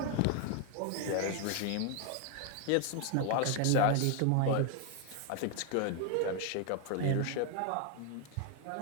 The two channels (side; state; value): both; different; correlation 0.01